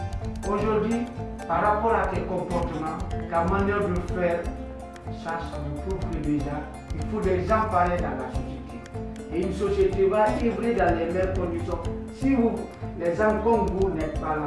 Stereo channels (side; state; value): both; identical; correlation 1.00